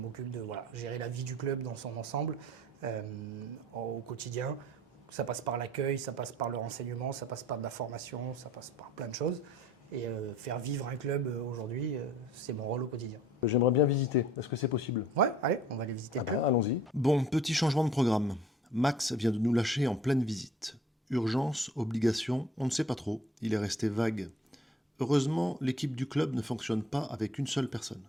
de gérer la vie du club dans son ensemble au quotidien. Ça passe par l'accueil, ça passe par le renseignement, ça passe par de la formation, ça passe par plein de choses. Et faire vivre un club aujourd'hui, c'est mon rôle au quotidien. J'aimerais bien visiter. Est-ce que c'est possible? Ouais, allez, on va aller visiter le club. Allons-y. Bon, petit changement de programme. Max vient de nous lâcher en pleine visite. Urgence, obligation, on ne sait pas trop. Il est resté vague. Heureusement, l'équipe du club ne fonctionne pas avec une seule personne.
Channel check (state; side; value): normal; both; correlation 0.53